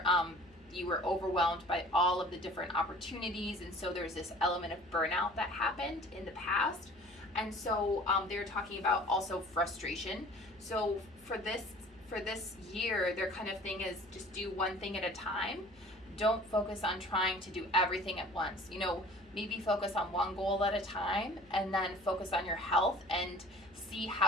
you were overwhelmed by all of the different opportunities. And so there's this element of burnout that happened in the past. And so they're talking about also frustration. So for this year, their kind of thing is just do one thing at a time. Don't focus on trying to do everything at once. You know, maybe focus on one goal at a time, and then focus on your health and see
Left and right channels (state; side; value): noise; left; hum, 27 dB below the sound